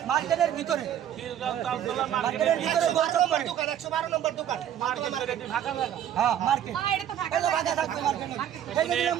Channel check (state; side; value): quieter; left; 10.4 dB